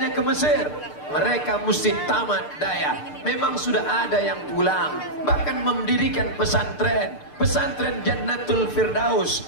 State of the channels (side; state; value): right; late; 6.7 ms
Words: ke Mesir? Mereka mesti tamat daya. Memang sudah ada yang pulang, bahkan mendirikan pesantren, pesantren Jannatul Firdaus,